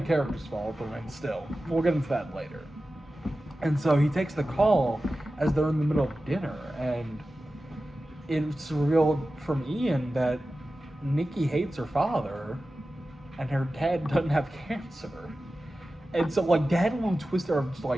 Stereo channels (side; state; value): both; normal; correlation 0.94